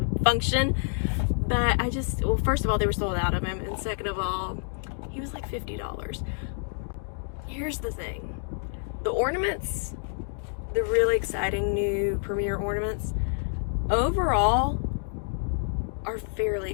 function, but well, first of all, they were sold out of him, and second of all, he was like $50. Here's the thing. The ornaments, the really exciting new premiere ornaments, overall are fairly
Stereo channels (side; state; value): right; silent; 59 dB below the other